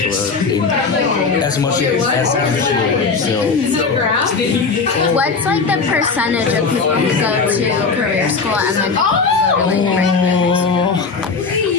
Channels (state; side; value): quieter; right; 4.7 dB